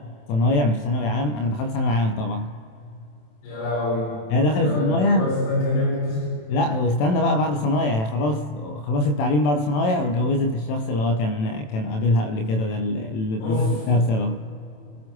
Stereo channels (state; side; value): late; right; 27 ms